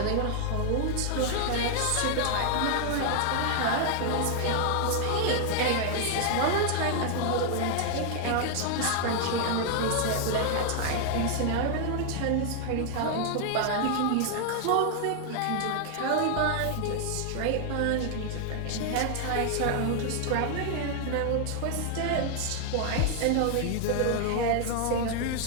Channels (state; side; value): different; both; correlation 0.00